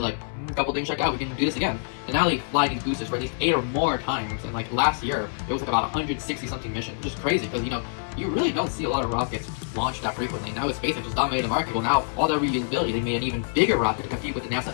like, a couple things check out. We can do this again. And now they fly these boosters for at least 8 or more times. And like last year, it was like about 160 something missions, which is crazy because you really don't see a lot of rockets launched that frequently. Now with SpaxeX just dominated the market. Well, now all that reusability, they made an even bigger rocket to compete with the NASA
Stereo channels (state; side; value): silent; right; 61 dB below the other